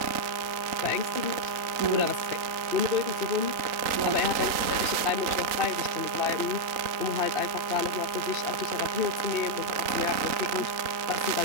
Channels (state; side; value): late; left; 3.8 ms